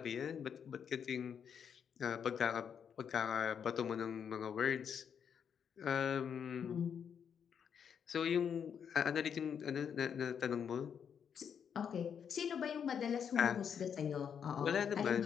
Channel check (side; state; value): right; quieter; 7.6 dB